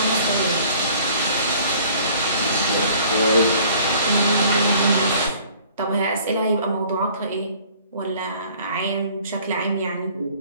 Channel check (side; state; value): both; inverted; correlation -0.53